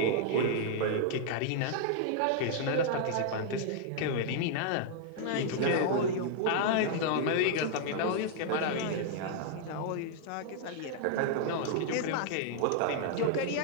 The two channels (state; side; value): different; both; correlation -0.01